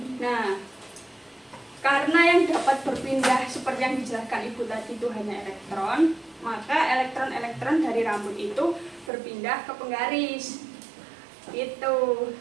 Nah, karena yang dapat berpindah seperti yang dijelaskan Ibu tadi itu hanya elektron, maka elektron-elektron dari rambut itu berpindah ke penggaris. Itu.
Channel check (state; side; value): drops out; left; at 9.1 s